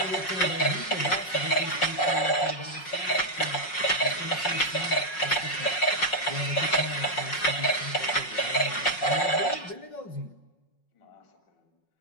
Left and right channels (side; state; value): right; late; 5.5 ms